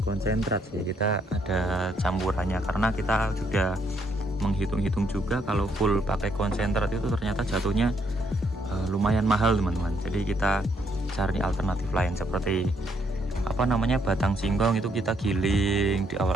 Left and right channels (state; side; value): normal; both; correlation 0.72